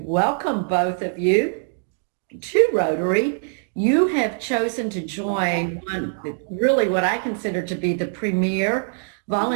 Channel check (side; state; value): left; silent; digital silence